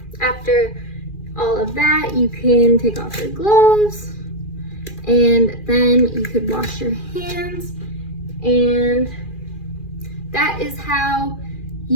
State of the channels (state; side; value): late; right; 2.4 ms